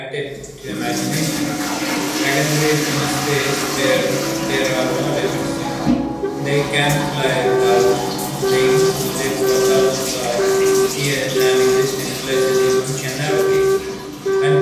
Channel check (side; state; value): both; identical; correlation 1.00